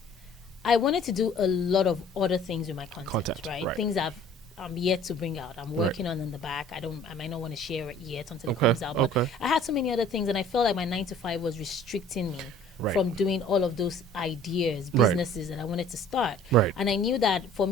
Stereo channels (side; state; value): both; normal; correlation 0.51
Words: I wanted to do a lot of other things with my content, right? Things I'm yet to bring out. I'm working on in the back. I might not want to share it yet until it comes out. But I had so many other things, and I felt like my 9 to 5 was restricting me from doing all of those ideas, businesses that I wanted to start. Right. And I knew that for